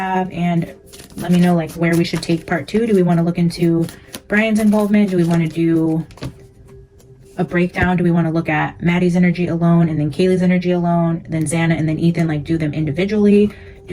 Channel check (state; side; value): identical; both; correlation 1.00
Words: and let me know like where we should take part 2. Do we want to look into Brian's involvement? Do we want to do a breakdown? Do we want to look at Maddie's energy alone and then Kaylee's energy alone, then Xana and then Ethan, like do them individually?